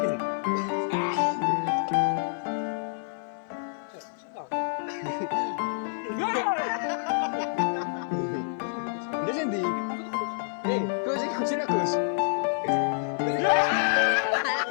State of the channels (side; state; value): right; silent; 59 dB below the other